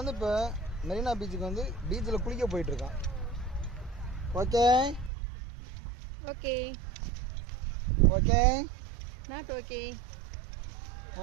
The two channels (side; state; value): left; drops out; at 5.1 s